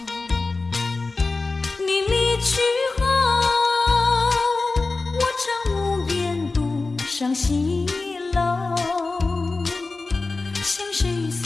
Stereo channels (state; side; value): quieter; right; 3.6 dB